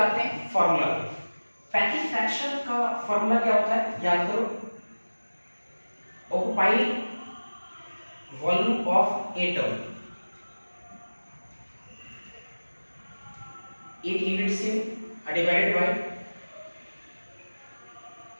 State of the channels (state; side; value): inverted; both; correlation -1.00